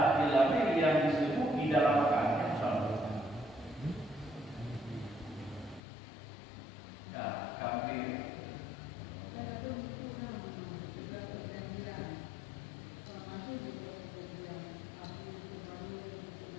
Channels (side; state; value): right; drops out; at 5.8 s